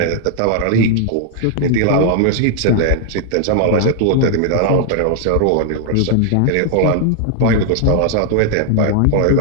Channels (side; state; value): both; different; correlation 0.00